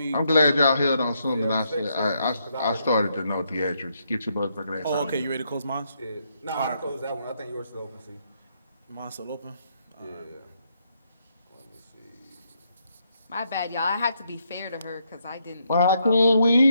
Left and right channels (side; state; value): both; inverted; correlation -0.77